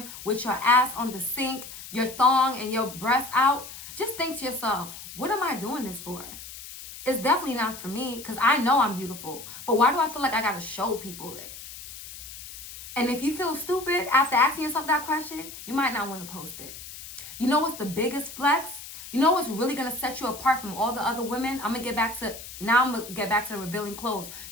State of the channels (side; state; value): left; noise; hiss, 13 dB below the sound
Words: with your ass on the sink, your thong and your breast out, just think to yourself, what am I doing this for? It's definitely not for me, because I know I'm beautiful. But why do I feel like I got to show people it? And if you feel stupid after asking yourself that question, you might not want to post it. You know what's the biggest flex? You know what's really going to set you apart from all the other women? I'm going to get back to the revealing clothes.